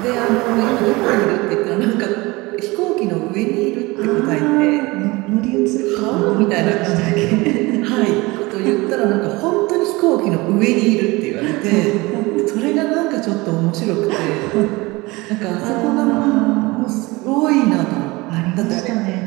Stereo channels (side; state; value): left; quieter; 22.7 dB